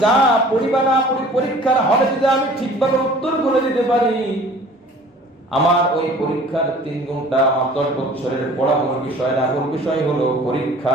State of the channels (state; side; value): normal; both; correlation 0.48